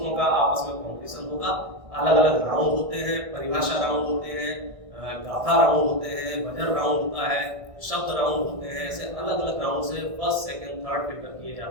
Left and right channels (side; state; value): left; late; 1.6 ms